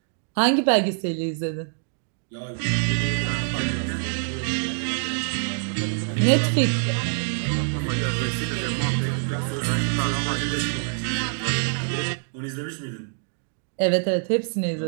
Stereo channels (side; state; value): left; silent; digital silence